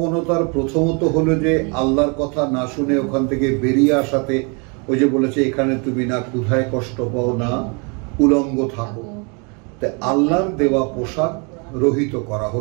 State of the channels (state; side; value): quieter; left; 33.8 dB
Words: প্রথমত হলো যে আল্লাহর কথা না শুনে ওখান থেকে বেরিয়ে আসাতে, ওই যে বলেছে এখানে তুমি না ক্ষুধায় কষ্ট পাও না উলঙ্গ থাকো, তাই আল্লাহর দেওয়া পোশাক রহিত করা